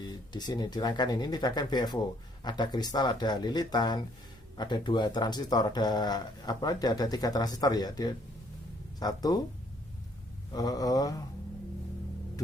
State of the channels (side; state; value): both; normal; correlation 0.65